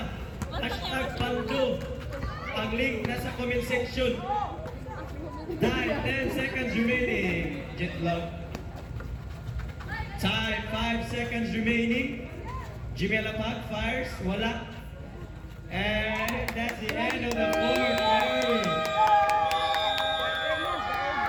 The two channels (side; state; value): both; identical; correlation 1.00